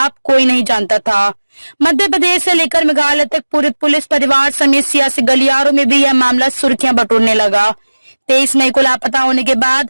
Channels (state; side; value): inverted; both; correlation -1.00